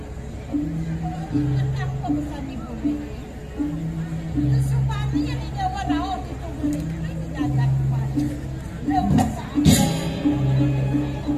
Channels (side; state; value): both; identical; correlation 1.00